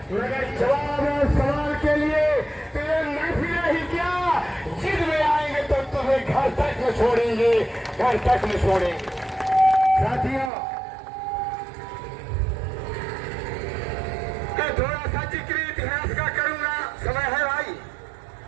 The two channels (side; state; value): left; drops out; at 10.5 s